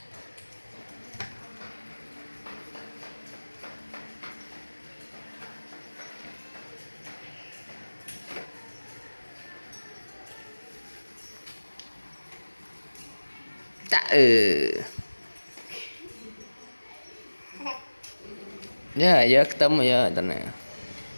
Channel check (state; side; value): inverted; both; correlation -1.00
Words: Dạ giờ tấm rồi giờ tận này